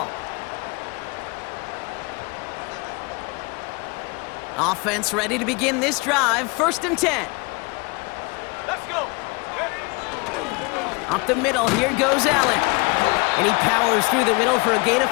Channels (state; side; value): quieter; right; 28.9 dB